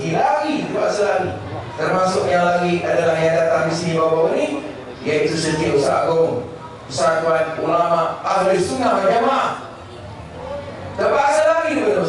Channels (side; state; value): both; identical; correlation 1.00